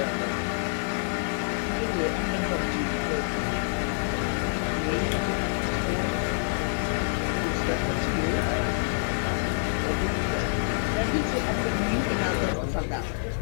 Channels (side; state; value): right; silent; digital silence